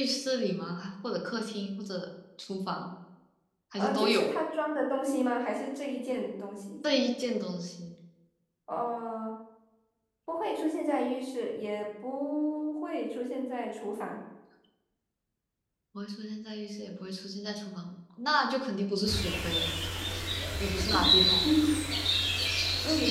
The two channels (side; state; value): both; identical; correlation 1.00